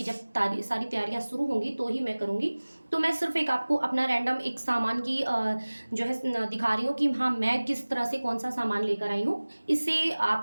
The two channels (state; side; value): inverted; both; correlation -1.00